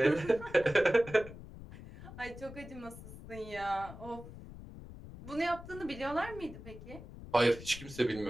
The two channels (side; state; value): left; noise; rumble, 14 dB below the sound